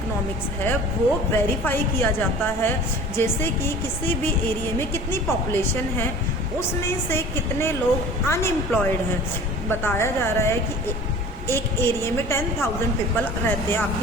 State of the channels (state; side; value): normal; both; correlation 0.42